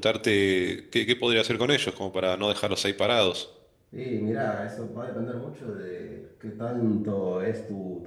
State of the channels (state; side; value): identical; both; correlation 1.00